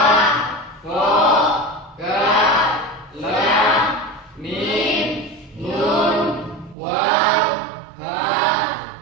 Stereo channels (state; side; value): drops out; left; at 6.8 s